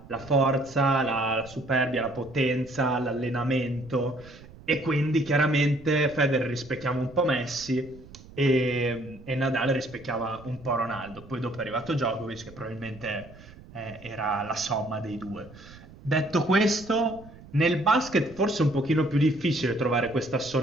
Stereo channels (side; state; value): right; noise; rumble, 20 dB below the sound